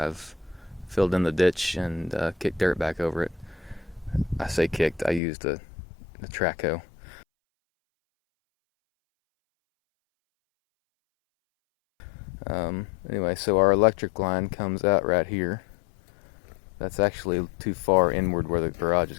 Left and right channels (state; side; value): drops out; right; at 5.2 s